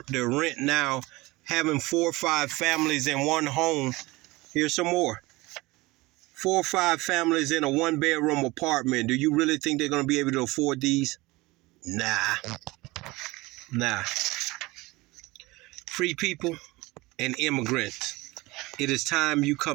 rent now, having 4 or 5 families in one home? Here's some more. 4 or 5 families in a 1-bedroom apartment. Do you really think they're gonna be able to afford these? Nah. Free people and immigrants. It is time you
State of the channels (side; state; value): left; quieter; 21.6 dB